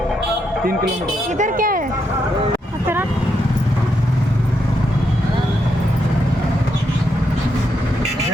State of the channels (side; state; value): both; normal; correlation 0.80